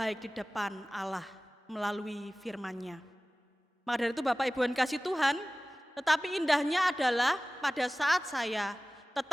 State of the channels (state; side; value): normal; both; correlation 0.98